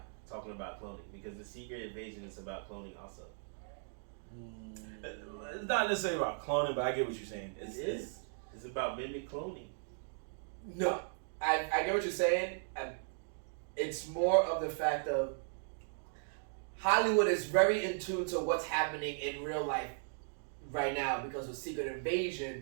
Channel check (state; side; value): silent; left; digital silence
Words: talking about cloning, because the Secret Invasion is about cloning also. It's not necessarily about cloning, but I get what you're saying. It's about mimic cloning. No, I get what you're saying. It's more of the fact of Hollywood is very in tune to what's happening in real life right now because of Secret